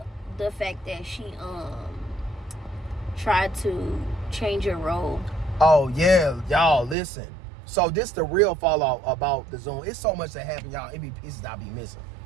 fact that she tried to change your role. Oh yeah, y'all listen. So this the real fallout about the Zoom. It's so much that happened, y'all. It be pieces I be missing.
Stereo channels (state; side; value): drops out; left; at 7.0 s